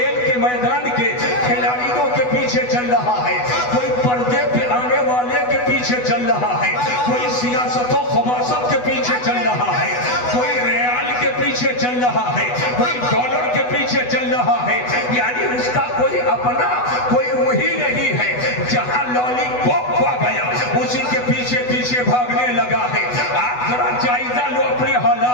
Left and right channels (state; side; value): late; right; 8.1 ms